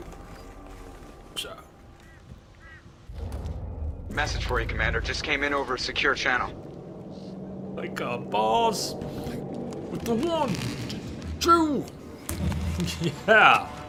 So. Message for you, Commander. Just came in over a secure channel. Like a boss. With the 1, 2. Yeah.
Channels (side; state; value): both; identical; correlation 1.00